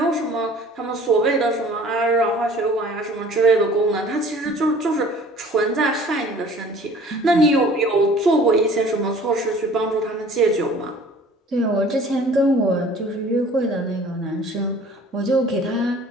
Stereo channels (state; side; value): normal; both; correlation 0.49